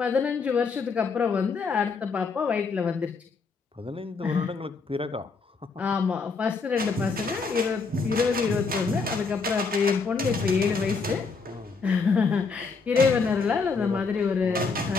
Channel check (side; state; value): right; quieter; 4.7 dB